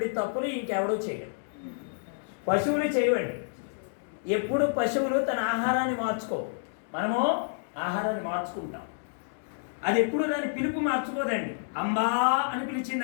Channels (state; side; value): silent; right; digital silence